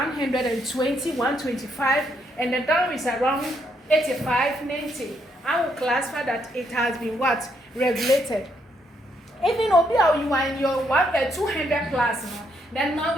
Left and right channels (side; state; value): both; normal; correlation 0.74